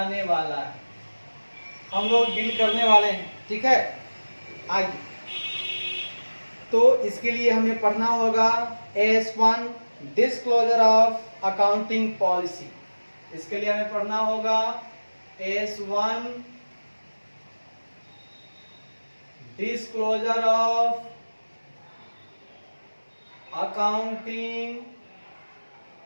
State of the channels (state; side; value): inverted; both; correlation -1.00